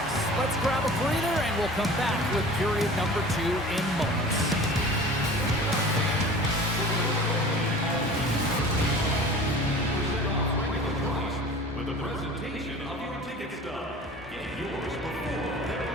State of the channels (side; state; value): both; normal; correlation 0.41